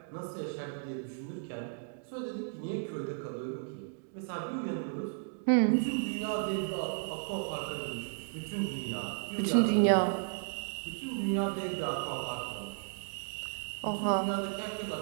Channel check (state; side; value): silent; left; digital silence